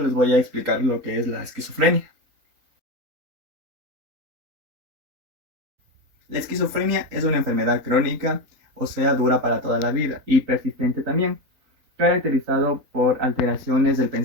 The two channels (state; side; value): late; left; 3.8 ms